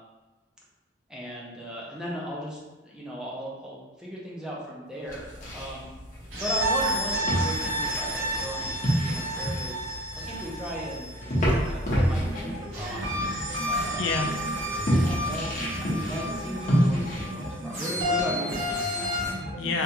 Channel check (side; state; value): both; normal; correlation 0.46